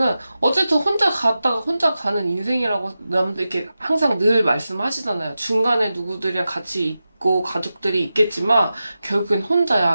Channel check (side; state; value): both; inverted; correlation -0.93